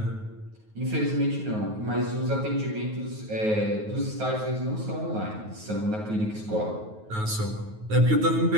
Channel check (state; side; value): late; left; 9.3 ms